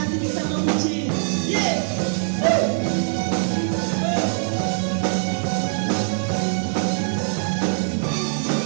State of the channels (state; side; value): silent; left; digital silence